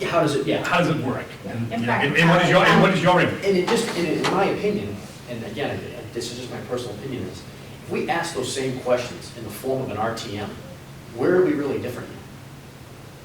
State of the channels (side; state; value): both; identical; correlation 1.00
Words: how does it, how does it work? And, In you know, fact, and what is your input? And it just, in my opinion, and again, this is just my personal opinion, is if we ask those same questions in the form of an RTM, where are we really different?